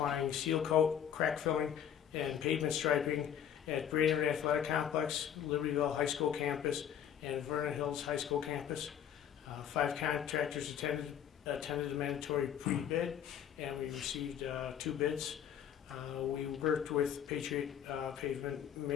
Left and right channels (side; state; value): right; quieter; 9.4 dB